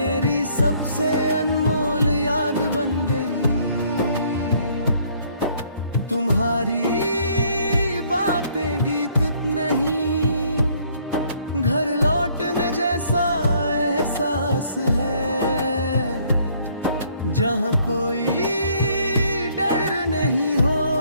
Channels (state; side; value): inverted; both; correlation -0.63